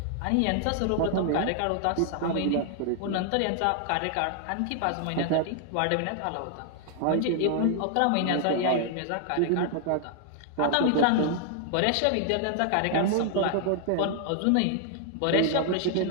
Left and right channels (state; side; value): different; both; correlation 0.00